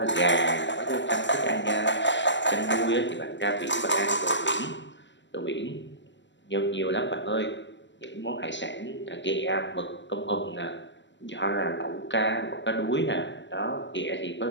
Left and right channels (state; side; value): late; right; 0.53 ms